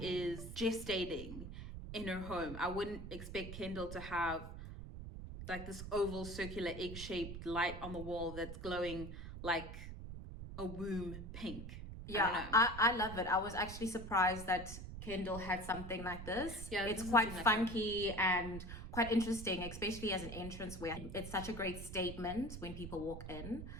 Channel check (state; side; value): noise; right; rumble, 9 dB below the sound